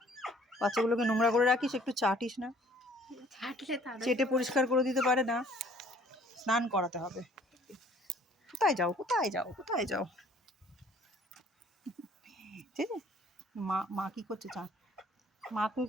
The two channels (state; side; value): normal; both; correlation 0.57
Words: বাচ্চাগুলোকে নোংরা করে রাখিস, একটু চাটিস না, চেটে পরিষ্কার করে দিতে পারে না। স্নান করাতে হবে। কোথায় যাও কোথায় যাও কোথায় যাও? ঠিক আছে, মা কি করছে? মা